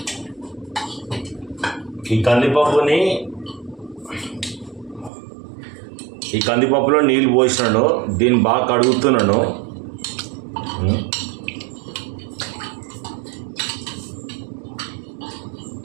ఈ కందిపప్పులో నీళ్ళు పోసినాను. దీన్ని బాగా కడుగుతున్నాను.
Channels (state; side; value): drops out; left; at 5.1 s